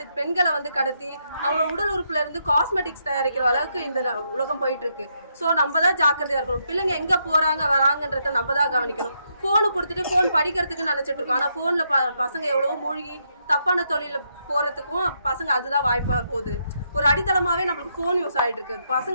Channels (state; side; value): inverted; both; correlation -0.78